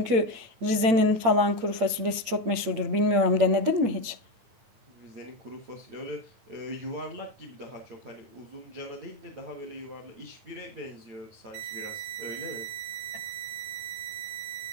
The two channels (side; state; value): left; late; 8.8 ms